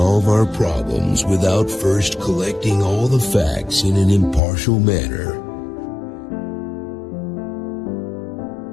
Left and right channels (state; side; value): drops out; right; at 4.4 s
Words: our problems without first collecting all the facts in an impartial manner.